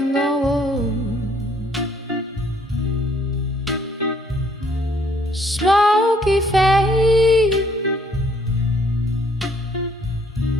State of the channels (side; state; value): both; normal; correlation 0.65